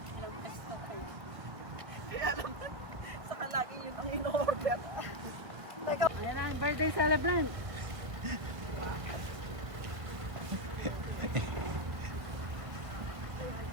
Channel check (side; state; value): left; late; 1.5 ms